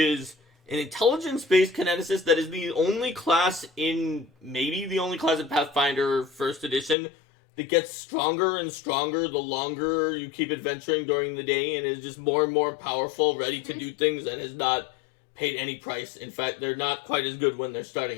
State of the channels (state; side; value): drops out; right; at 7.0 s